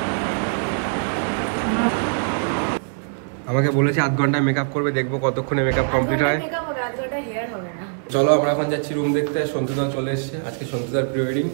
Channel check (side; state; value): left; silent; digital silence